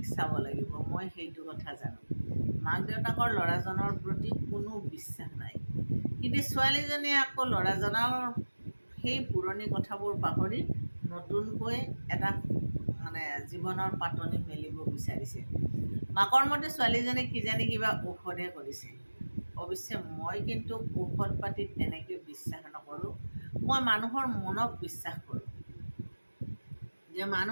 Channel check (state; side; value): inverted; both; correlation -1.00